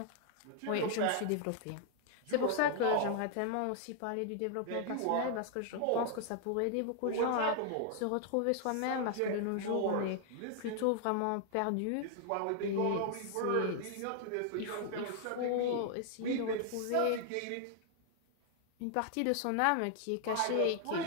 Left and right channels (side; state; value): both; different; correlation 0.00